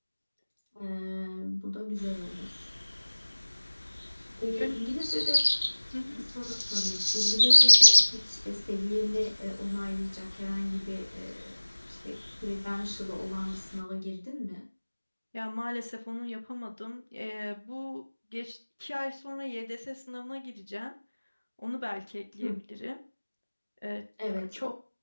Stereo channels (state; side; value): inverted; both; correlation -1.00